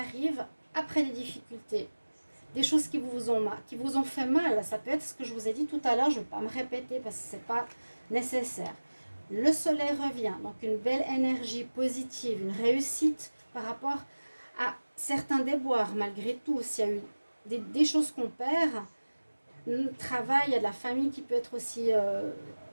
après des difficultés. Des choses qui vous ont fait mal. Ça peut être ce que je vous ai dit tout à l'heure, je ne vais pas me répéter parce que ce n'est pas nécessaire. Le soleil revient, donc une belle énergie positive, une réussite par rapport à certains déboires. Malgré tout, s'il y a eu des choses qu'on perd, le travail, il y a de la famille qui peut être aussi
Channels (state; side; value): inverted; both; correlation -1.00